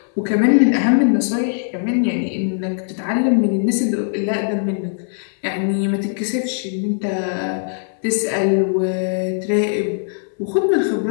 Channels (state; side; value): silent; right; 60 dB below the other